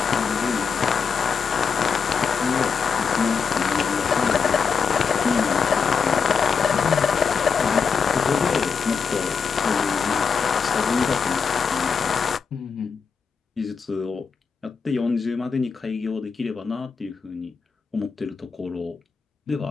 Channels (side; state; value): right; quieter; 5.9 dB